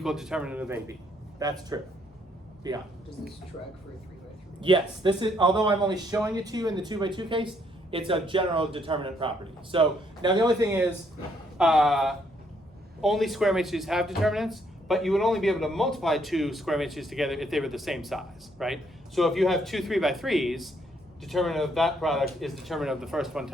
determinant of AB. That's true. Beyond. Does this track for a 3 by 3? Yes, this is, although I'm only showing it to you in the 2 by 2 case, it's a general determinant property. So now the only thing is, only square matrices have determinants, but you would only be able to multiply 2 square matrices together if they were the same size, right? So if you have 2 3 by 3s, determinant of that product is determinant of the first one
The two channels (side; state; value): both; normal; correlation 0.70